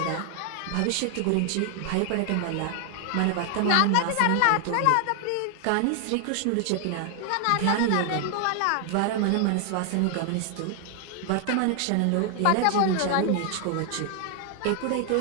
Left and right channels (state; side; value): different; both; correlation 0.00